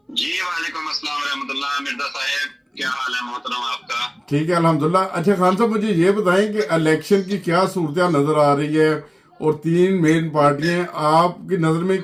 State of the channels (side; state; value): both; identical; correlation 1.00